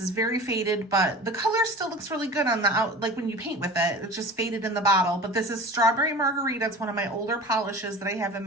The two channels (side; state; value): both; normal; correlation 0.37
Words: very faded, but the color still looks really good on the out, like when you paint with it. It's just faded in the bottle. But this is Strawberry Margarita. It's one of my older polishes that I have in